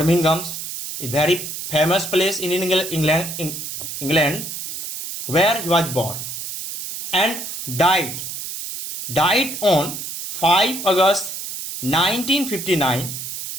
is a very famous place in England where he was born and died on 5 August 1959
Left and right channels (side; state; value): right; noise; hiss, 7 dB below the sound